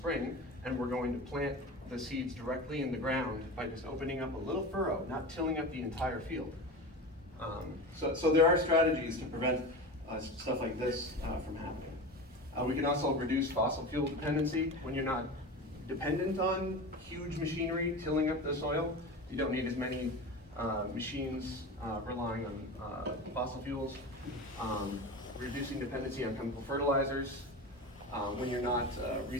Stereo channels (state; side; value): normal; both; correlation 0.28